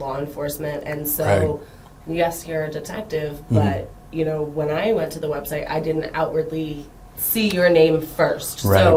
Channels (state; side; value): identical; both; correlation 1.00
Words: enforcement, and so yes, you're a detective, but when I went to the website, I didn't outwardly see your name first. Right.